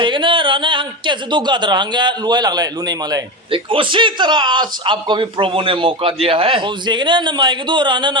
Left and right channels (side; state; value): both; normal; correlation 0.20